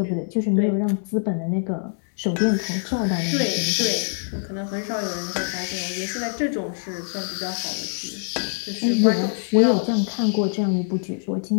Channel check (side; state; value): right; silent; 62 dB below the other